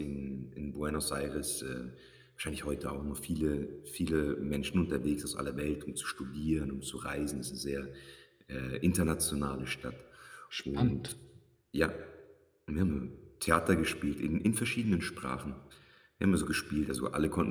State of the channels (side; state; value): both; identical; correlation 1.00